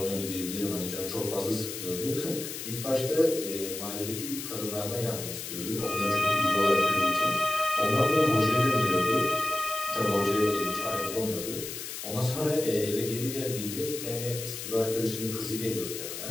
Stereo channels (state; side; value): noise; left; hiss, 8 dB below the sound